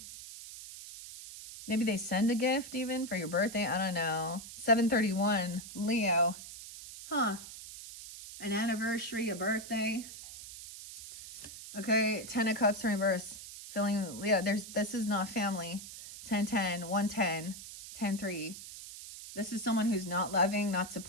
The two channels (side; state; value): right; noise; hiss, 13 dB below the sound